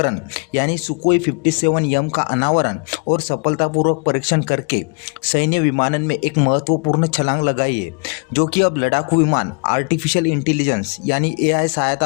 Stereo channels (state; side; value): quieter; right; 35.2 dB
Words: यानी सुकोई 57M का अनावरण और सफलतापूर्वक परीक्षण करके सैन्य विमानन में एक महत्वपूर्ण छलांग लगाई है, जो कि अब लड़ाकू विमान आर्टिफिशियल इंटेलिजेंस यानी AI सहायता